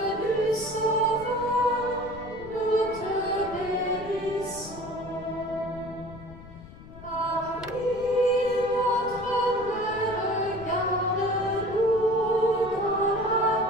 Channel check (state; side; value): noise; left; rumble, 17 dB below the sound